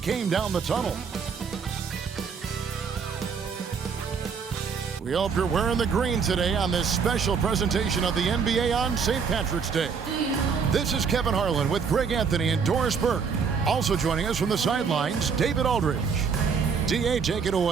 down the tunnel. We hope you're wearing the green today on this special presentation of the NBA on St. Patrick's Day. This is Kevin Harlan with Greg Anthony and Doris Burke. Also joining us from the sidelines, David Aldridge. DA, take it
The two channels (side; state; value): left; quieter; 6.0 dB